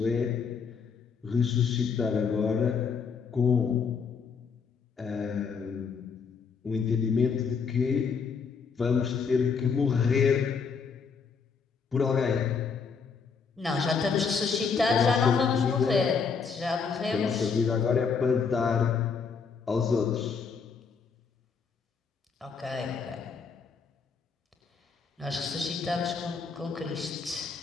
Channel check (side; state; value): right; quieter; 5.6 dB